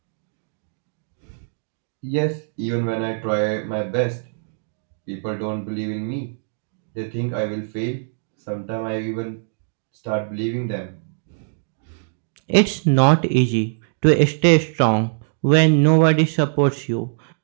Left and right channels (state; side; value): silent; left; digital silence